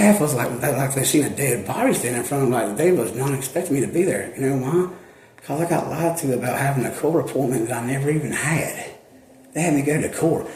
was like they seen a dead body standing in front of them, like they was not expecting me to be there. You know why? Because I got lied to about having a court appointment that I never even had. They had me go to court.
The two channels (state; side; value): identical; both; correlation 1.00